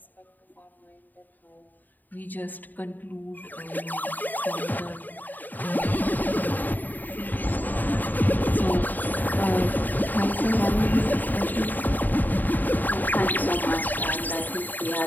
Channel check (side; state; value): right; late; 0.087 ms